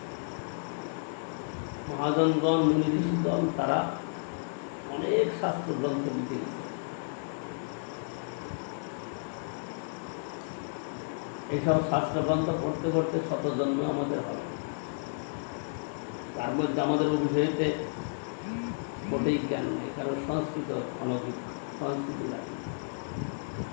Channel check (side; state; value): right; silent; 57 dB below the other